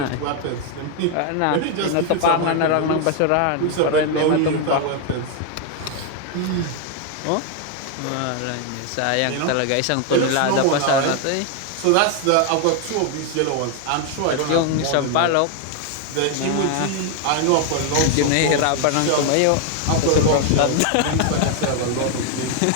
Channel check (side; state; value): both; different; correlation 0.01